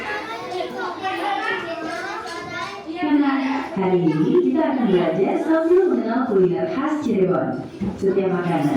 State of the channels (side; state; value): both; identical; correlation 1.00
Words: Hari ini kita akan belajar sambil mengenal kuliner khas Cirebon. Setiap